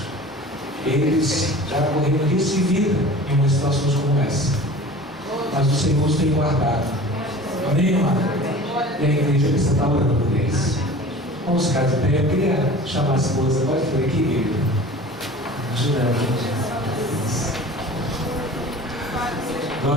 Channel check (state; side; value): normal; both; correlation 0.41